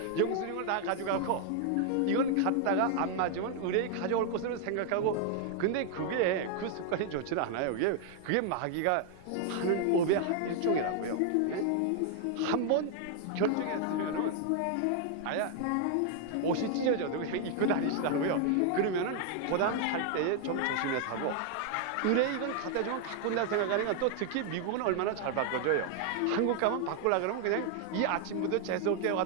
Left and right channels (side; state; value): both; different; correlation 0.00